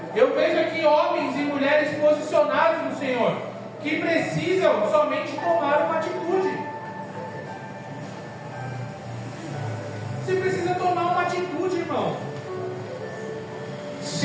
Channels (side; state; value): both; identical; correlation 1.00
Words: Eu vejo aqui homens e mulheres posicionados no Senhor, que precisam somente tomar uma atitude. Você precisa tomar uma atitude, irmão.